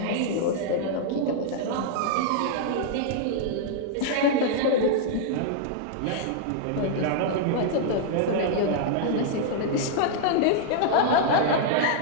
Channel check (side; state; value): both; different; correlation -0.01